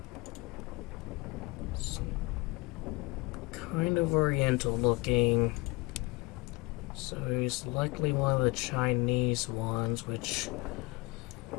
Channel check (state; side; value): quieter; right; 24.2 dB